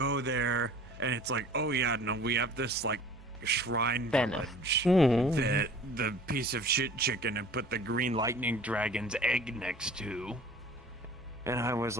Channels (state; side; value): normal; both; correlation 0.46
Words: there and it's like, oh yeah, no, we have this like shrine village that the piece of shit chicken had put the green lightning dragon's egg next to. And I was